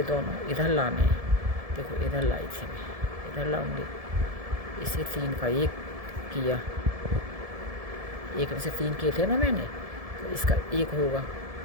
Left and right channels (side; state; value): left; late; 1.7 ms